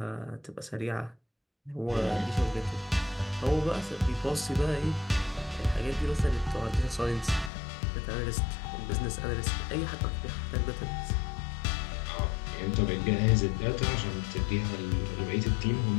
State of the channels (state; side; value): drops out; right; at 7.5 s